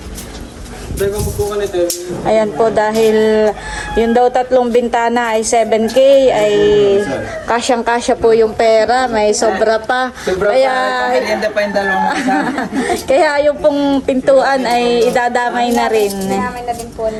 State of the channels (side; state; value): both; identical; correlation 1.00